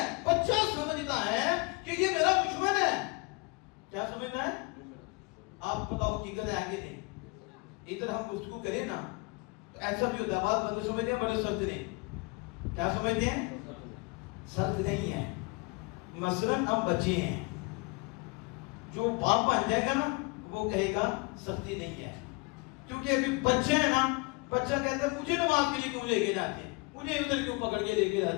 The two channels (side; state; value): right; quieter; 28.5 dB